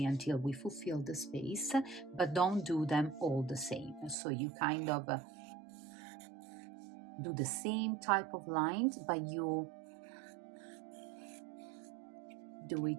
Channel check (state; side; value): drops out; left; at 4.2 s